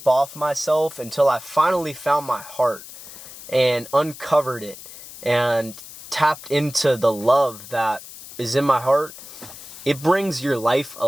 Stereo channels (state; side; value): noise; left; hiss, 15 dB below the sound